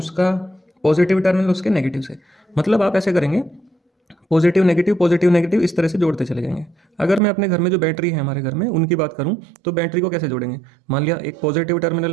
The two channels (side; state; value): left; drops out; at 7.2 s